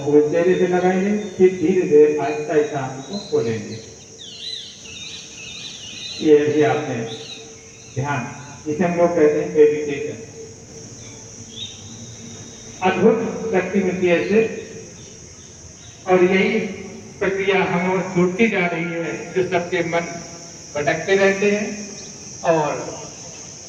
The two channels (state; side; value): identical; both; correlation 1.00